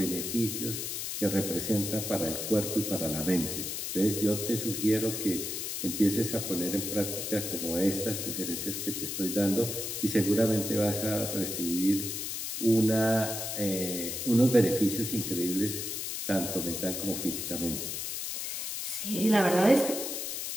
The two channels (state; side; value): noise; left; hiss, 4 dB below the sound